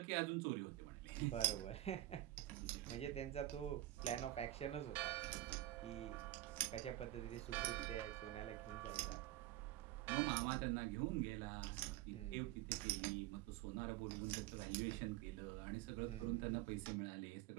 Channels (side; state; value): left; quieter; 15.3 dB